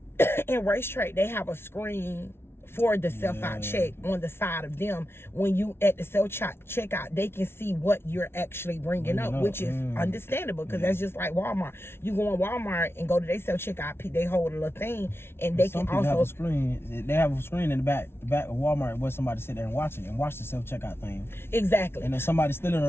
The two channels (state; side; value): late; right; 0.12 ms